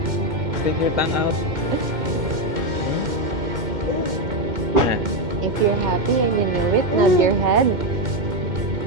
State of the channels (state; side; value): late; left; 2.1 ms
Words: Stick your tongue out. If you're happy and you know it, nod your head.